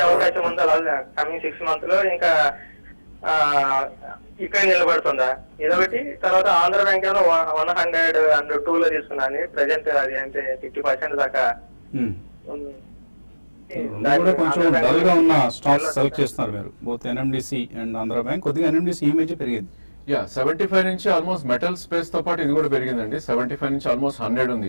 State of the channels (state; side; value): inverted; both; correlation -1.00